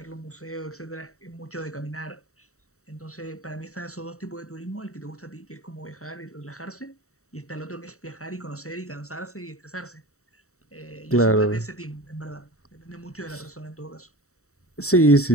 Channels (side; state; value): right; late; 0.64 ms